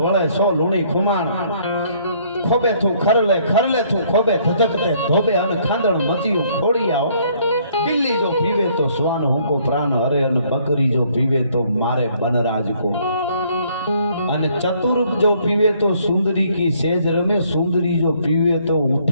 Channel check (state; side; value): inverted; both; correlation -0.64